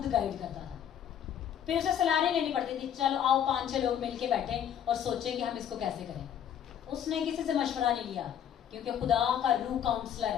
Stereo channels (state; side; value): quieter; right; 9.4 dB